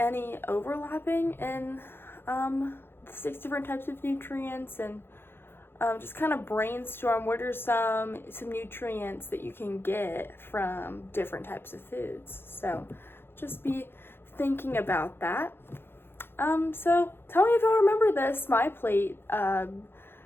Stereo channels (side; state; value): right; late; 0.11 ms